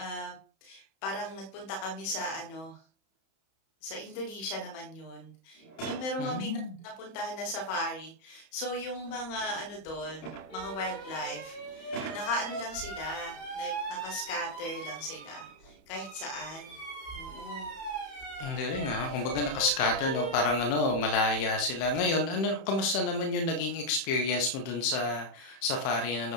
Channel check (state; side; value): late; right; 31 ms